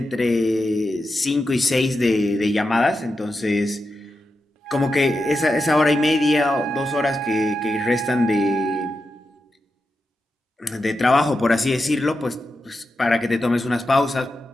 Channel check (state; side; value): normal; both; correlation 0.89